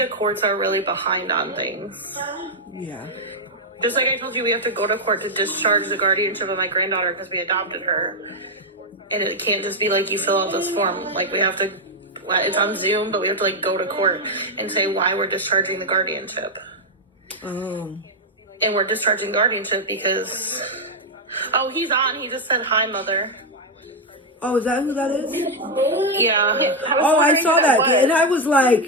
courts are really behind on things. Yeah. Just like I told you, we have to go to court to discharge the guardianship of my granddaughter because we adopted her. And it can't just be like you fill out this form. Like we have to, it's on Zoom, but we have to like go to court and say why we're discharging the guardianship. Oh. And we're discharging guardianship because, oh, he's on. He just said, hi, mother. Oh, is that who that is? Yeah. Oh, I saw that. And I was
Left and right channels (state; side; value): normal; both; correlation 0.02